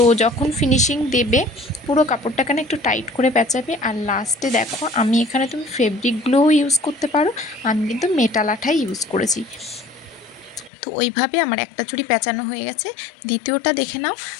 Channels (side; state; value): right; drops out; at 10.7 s